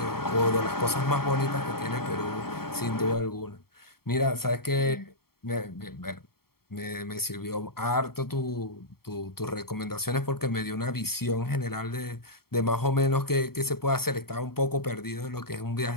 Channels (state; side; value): late; right; 0.94 ms